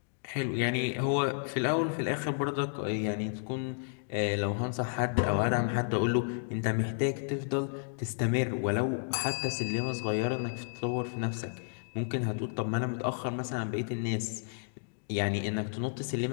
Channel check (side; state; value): right; silent; digital silence